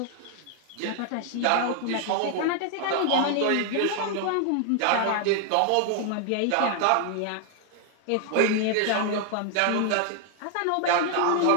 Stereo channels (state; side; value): different; both; correlation 0.00